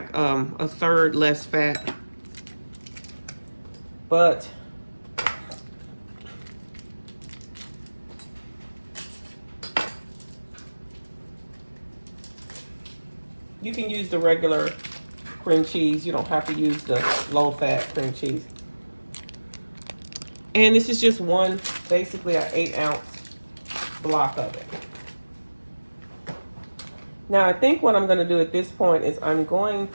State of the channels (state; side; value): inverted; both; correlation -1.00